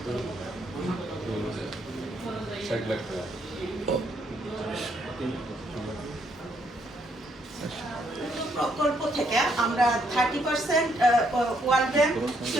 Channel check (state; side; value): normal; both; correlation 0.72